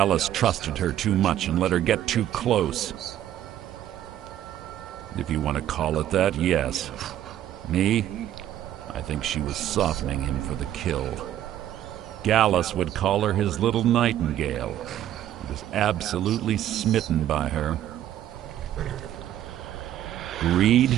trusted her too much and let her get too close. If you want to call it that, yes. Me? I think she was softening him for the kill. Gallus would call her his little nightingale. He was absolutely smitten by her. Greed?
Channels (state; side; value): quieter; left; 11.8 dB